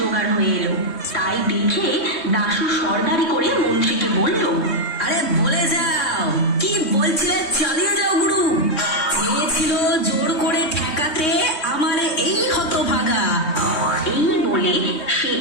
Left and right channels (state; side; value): late; right; 3.2 ms